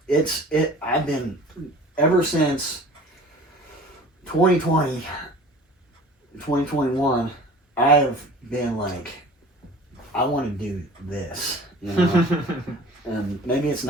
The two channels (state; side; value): normal; both; correlation 0.44